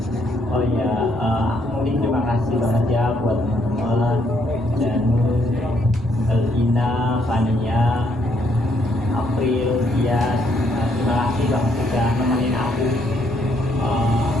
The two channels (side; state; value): right; noise; rumble, 17 dB below the sound